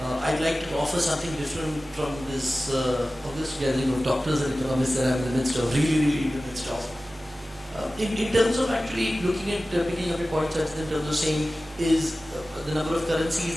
I'd like to offer something different from this August gathering of doctors and economists that I'm in the midst of, really in the midst of. In terms of actually looking at picking up your points, in terms of saying is the number of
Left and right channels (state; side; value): normal; both; correlation 0.96